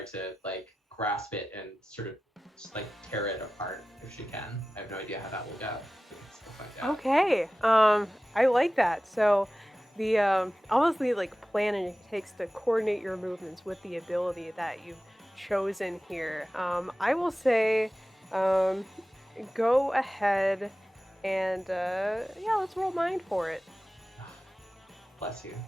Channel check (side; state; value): both; normal; correlation 0.96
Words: to like grasp it and sort of just like tear it apart if she can. I have no idea how that will go. We'll find out. Okay. I like that. So the obviously like planning it takes to coordinate your movements with the ability that you've chosen here. I will say go ahead and yeah, let's roll mind for it. Bless you.